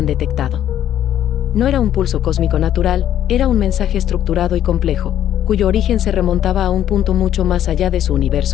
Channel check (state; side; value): quieter; right; 11.1 dB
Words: detectado. No era un pulso cósmico natural, era un mensaje estructurado y complejo, cuyo origen se remontaba a un punto mucho más allá de su